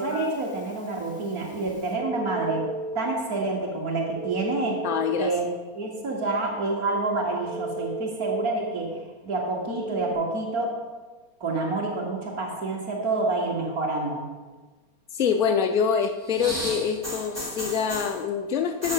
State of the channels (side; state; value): left; late; 4.3 ms